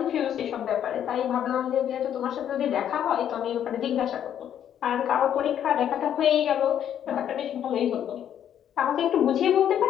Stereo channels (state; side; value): quieter; right; 9.8 dB